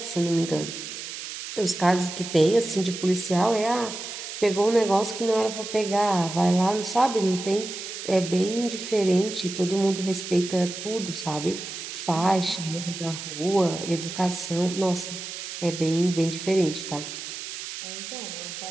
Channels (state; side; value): noise; right; hiss, 8 dB below the sound